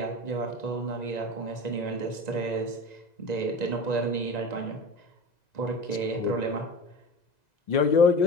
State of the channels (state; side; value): late; right; 2.0 ms